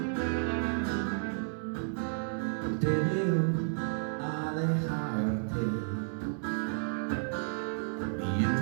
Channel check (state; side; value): silent; left; 56 dB below the other